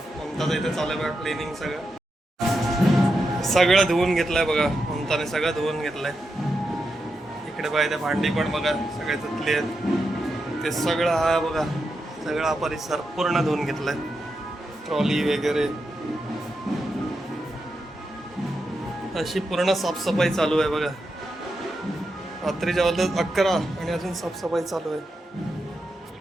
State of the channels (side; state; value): both; normal; correlation 0.87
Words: ममताचं इथे चालू आहे बघा क्लिनिंग. सगळं धुवून घेतलंय बघा ममताने, सगळं धुवून घेतलंय. इकडे बघा इथे भांडी पण बघा सगळे धुतली आहेत. ते सगळं हा बघा सगळा परिसर पूर्ण धुवून घेतलाय. ट्रॉली वगैरे अशी पूर्ण साफसफाई चालू आहे बघा. रात्रीच्या वाजल्यात 11 आणि अजून साफसफाई चालू आहे.